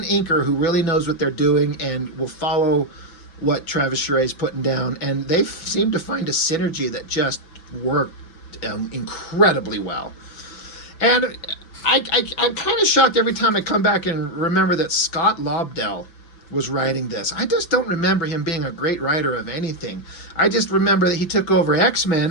inker who really knows what they're doing and will follow what Travis Charest is putting down. And they seem to find a synergy that just worked incredibly well. And I'm kind of shocked every time I come back and remember that Scott Lobdell was writing this. I just don't remember him being a great writer of anything. I just remember that he took over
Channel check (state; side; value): late; right; 6.0 ms